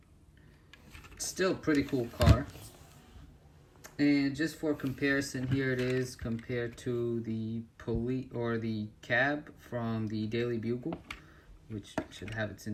still pretty cool car. And just for comparison, here it is compared to the police or the cab from the Daily Bugle, which should have its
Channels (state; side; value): identical; both; correlation 1.00